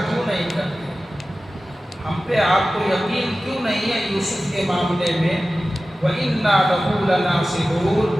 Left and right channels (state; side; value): normal; both; correlation 0.95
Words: کیوں نہیں کرتے، ہم پہ آپ کو یقین کیوں نہیں ہے یوسف کے معاملے میں؟ وَإِنَّا لَهُ